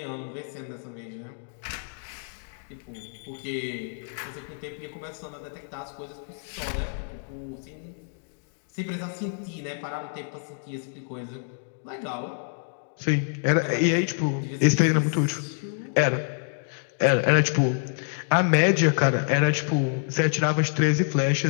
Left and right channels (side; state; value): right; silent; digital silence